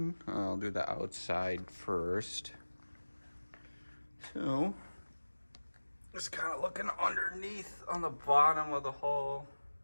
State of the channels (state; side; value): inverted; both; correlation -1.00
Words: I'll do the outside first. So, just kind of looking underneath on the bottom of the hull.